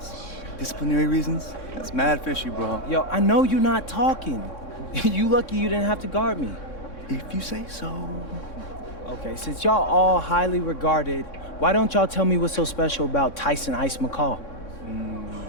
Disciplinary reasons? That's mad fishy, bro. Yo, I know you're not talking. You lucky you didn't have to guard me. If you say so. Okay, since y'all all highly regarded, why don't y'all tell me what's so special about Tyson Ice McCall?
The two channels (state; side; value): late; right; 3.6 ms